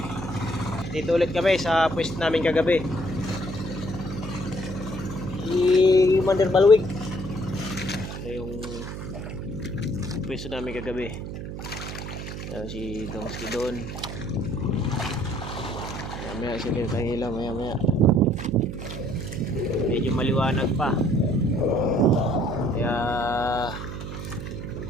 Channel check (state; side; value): noise; right; hum, 8 dB below the sound